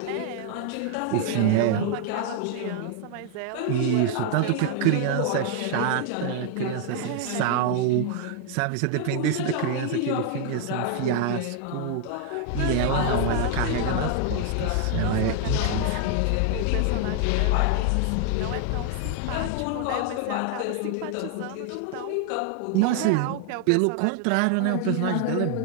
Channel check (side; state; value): both; different; correlation 0.00